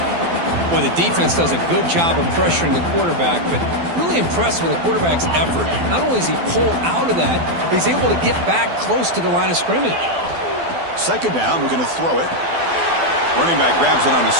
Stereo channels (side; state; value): left; late; 12 ms